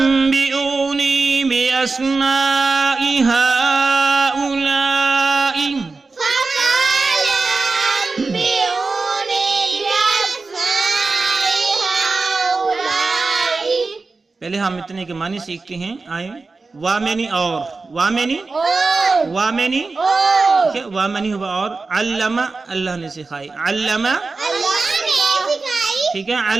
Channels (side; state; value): left; quieter; 3.9 dB